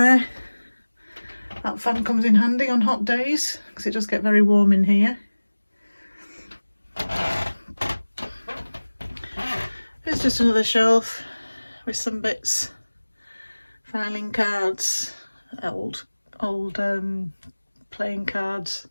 That fan comes in handy on hot days because it does get very warm in here. There's just another shelf with some bits, filing cards, old playing cards,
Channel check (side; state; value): both; inverted; correlation -1.00